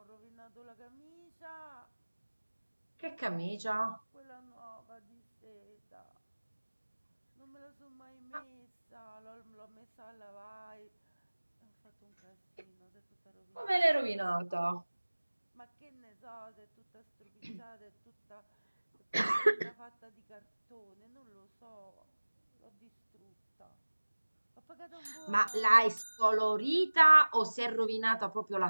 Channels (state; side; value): inverted; both; correlation -1.00